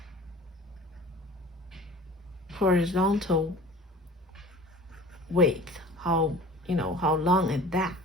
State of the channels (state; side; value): normal; both; correlation 0.42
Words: horizontal width, how long is that?